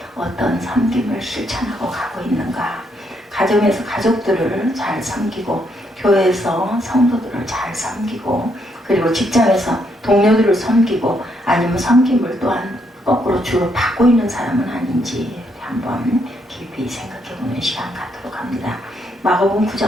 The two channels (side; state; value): both; normal; correlation 0.75